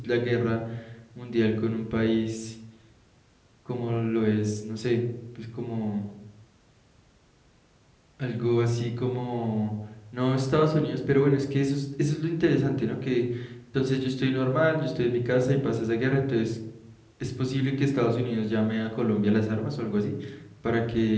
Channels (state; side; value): identical; both; correlation 1.00